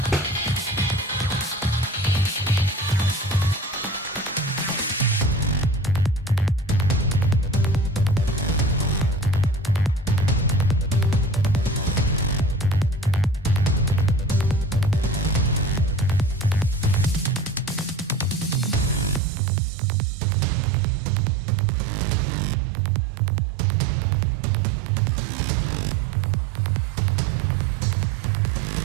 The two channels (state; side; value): drops out; left; at 19.2 s